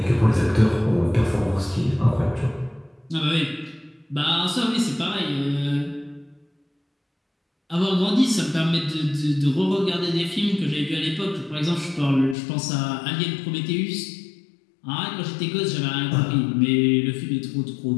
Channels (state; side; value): drops out; right; at 12.4 s